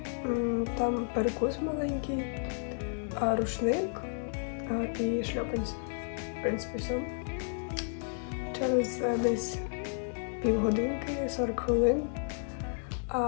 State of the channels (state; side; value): silent; right; digital silence